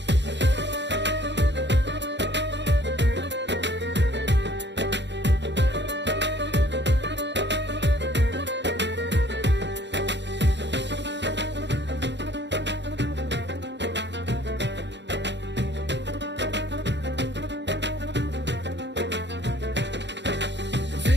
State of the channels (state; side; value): late; left; 0.52 ms